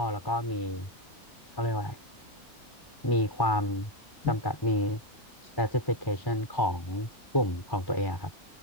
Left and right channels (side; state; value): both; normal; correlation 0.09